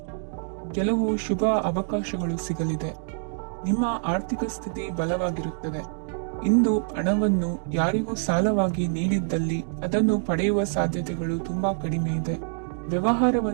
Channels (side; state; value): left; silent; 61 dB below the other